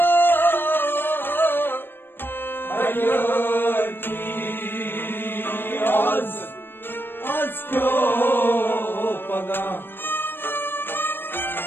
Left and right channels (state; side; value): late; right; 0.099 ms